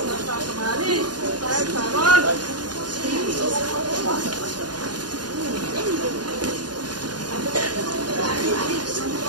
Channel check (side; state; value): left; late; 0.70 ms